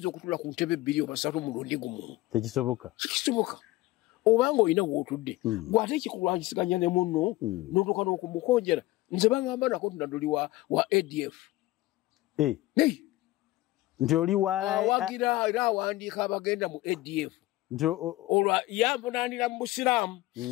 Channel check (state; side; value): quieter; right; 18.1 dB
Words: okutula ku ntebe 2 oba 3 mulundi gumu. Tekisoboka. Kisoboka. Obanga olina w'otudde gw'ate ekikulwanyisiganya ne munno n'otuuka n'okumukonjera. Nze bangamba nako Nadduli wa ADF. Nti oli awagira era awandiika abagenda mu ADF. Olwa yamvunaanira mu Busiraamu.